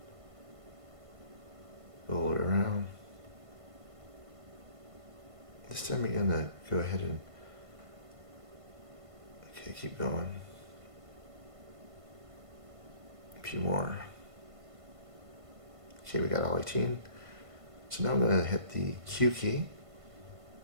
Roll it around. This time you're gonna go ahead and, okay, keep going. A few more. Okay, we got all 18. So now I'm gonna hit the Q key.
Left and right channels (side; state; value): left; late; 1.5 ms